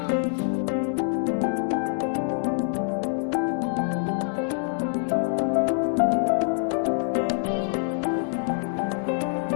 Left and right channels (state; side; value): silent; right; 61 dB below the other